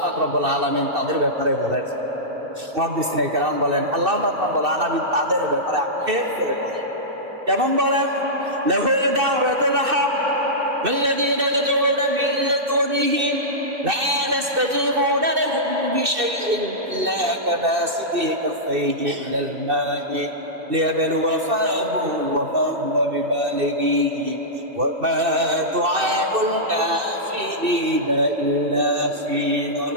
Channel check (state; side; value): late; left; 2.6 ms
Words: পাক রব্বুল আলামিন তাদের ব্যাপারে বলেন, মুহাদ্দিসিনে কেরাম বলেন, আল্লাহ পাক রব্বুল আলামিন তাদের ব্যাপারে আক্ষেপ করে বলেন, কেমন বলেন? লাহু দাওয়াতুল হক ওয়াল্লাযীনা ইয়াদউনা মিন দুনিহি লা يستجيبون لهم بشيء إلا كباسط كفيه إلى الماء ليبلو فاه وما هو ببالغه وما دعاء الكافرين إلا في